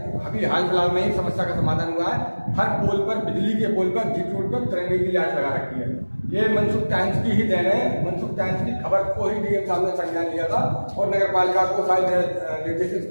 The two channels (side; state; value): both; inverted; correlation -1.00